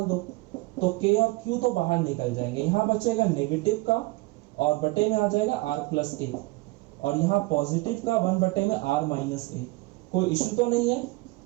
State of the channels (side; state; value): left; quieter; 22.4 dB